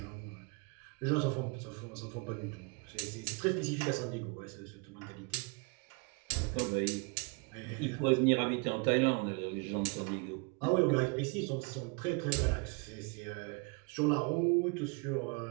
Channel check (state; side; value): quieter; left; 31.4 dB